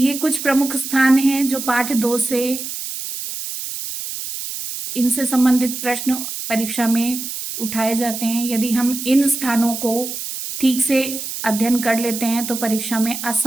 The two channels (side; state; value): right; noise; hiss, 7 dB below the sound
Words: कुछ प्रमुख स्थान हैं जो पाठ 2 से इनसे संबंधित प्रश्न परीक्षा में उठाए जाते हैं। यदि हम इन स्थानों को ठीक से अध्ययन कर लेते हैं तो परीक्षा में